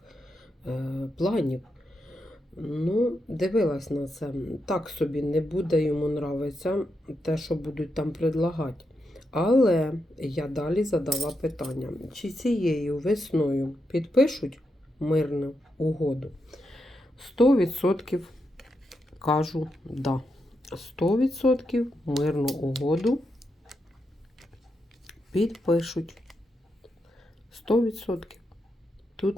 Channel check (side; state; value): both; normal; correlation 0.84